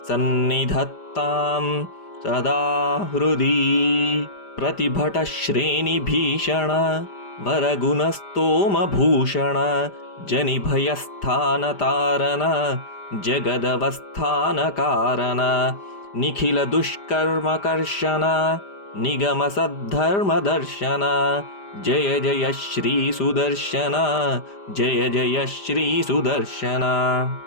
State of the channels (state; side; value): late; right; 5.0 ms